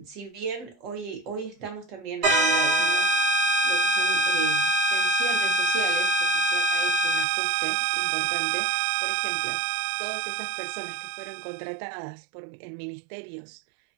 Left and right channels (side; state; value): left; drops out; at 7.2 s